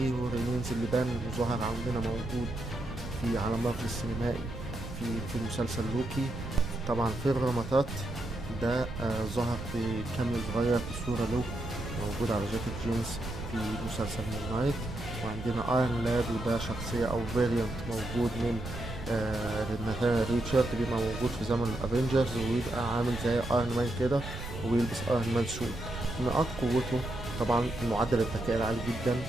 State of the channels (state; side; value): noise; right; rumble, 9 dB below the sound